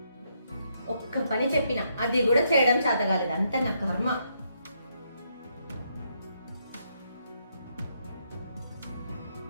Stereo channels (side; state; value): both; inverted; correlation -0.76